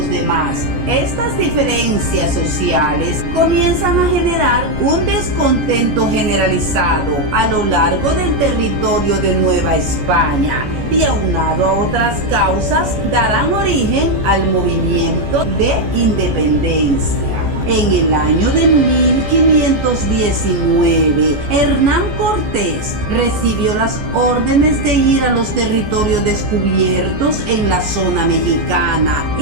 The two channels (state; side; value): late; left; 14 ms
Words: demás. Estas diferencias sociales comienzan a generar un descontento generalizado a lo largo del territorio de Nueva España, y aunado a otras causas darán origen al movimiento de independencia. En el año de 1519, Hernán Cortés recibió las órdenes de ir a los territorios descubiertos en la zona mexicana